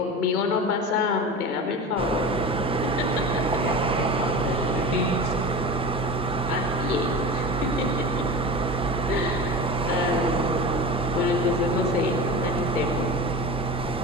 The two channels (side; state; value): both; normal; correlation 0.30